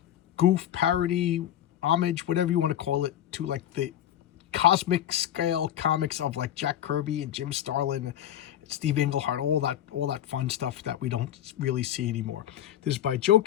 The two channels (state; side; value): quieter; right; 11.3 dB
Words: goof parody, homage, whatever you want to call it, to like the cosmic scale comics of like Jack Kirby and Jim Starlin, Steve Englehart, all that fun stuff that we don't really see anymore. This is by Joe